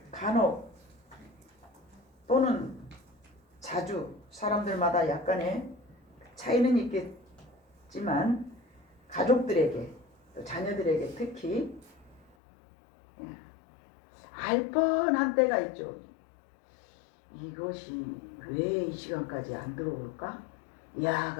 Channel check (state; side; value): drops out; right; at 12.3 s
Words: 간혹 또는 자주 사람들마다 약간의 차이는 있겠지만 가족들에게 또 자녀들에게 특히 알 뻔한 때가 있죠. 이것이 왜 이 시간까지 안 들어올까?